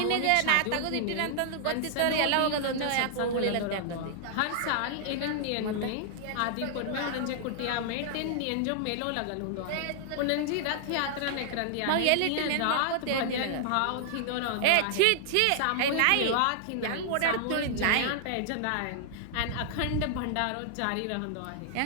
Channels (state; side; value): different; both; correlation -0.01